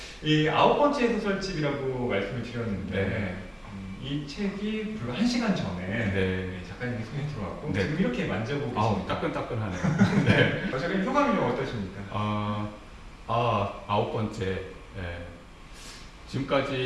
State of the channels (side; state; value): both; identical; correlation 1.00